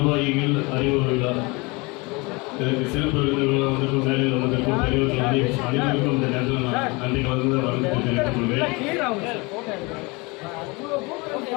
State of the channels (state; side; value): quieter; right; 26.4 dB